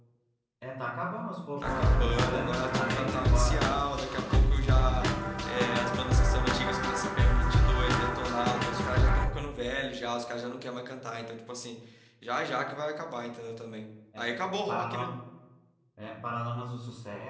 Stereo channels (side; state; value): both; identical; correlation 1.00